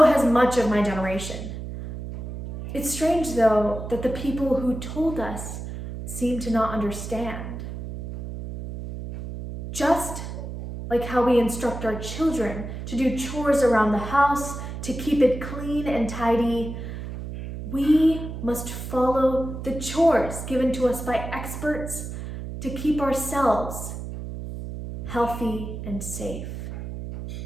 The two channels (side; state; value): right; noise; hum, 8 dB below the sound